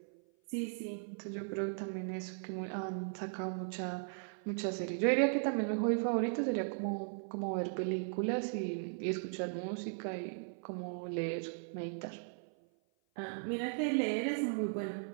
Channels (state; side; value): silent; left; 53 dB below the other